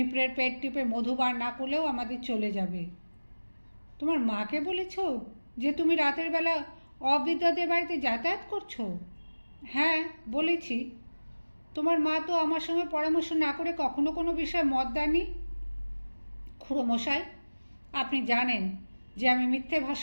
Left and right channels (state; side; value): inverted; both; correlation -1.00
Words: পেট টিপে মধু বার না করলেও আমাদের চলে যাবে। তোমার মাকে বলেছ যে তুমি রাতের বেলা অবিদ্যাদের বাড়িতে যাতায়াত করছো? হ্যাঁ, বলেছি। তোমার মা তো আমার সঙ্গে পরামর্শ না করে কখনো কোনো বিষয়ে মত দেননি। খুড়োমশাই, আপনি জানেন যে আমি মিথ্যে